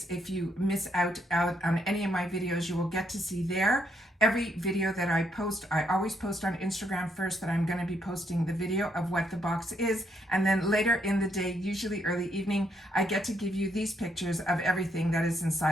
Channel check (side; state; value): both; normal; correlation 0.74